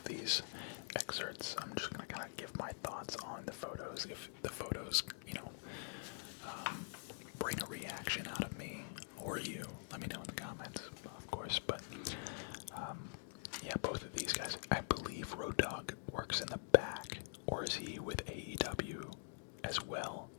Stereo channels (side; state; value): right; silent; digital silence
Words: these excerpts. I'm just gonna kind of give my thoughts on the photos. If the photos, bring a reaction out of me or you, let me know in the comments, of course. But yeah, both of these guys. I believe Road Dogg works in the back, or is he with AEW as well,